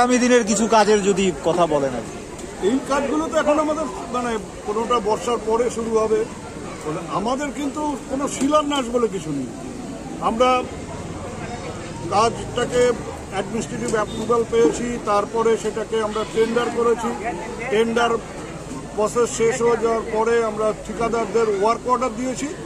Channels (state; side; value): identical; both; correlation 1.00